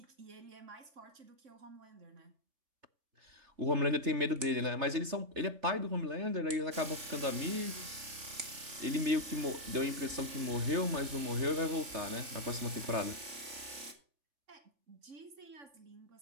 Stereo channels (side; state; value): left; late; 3.5 ms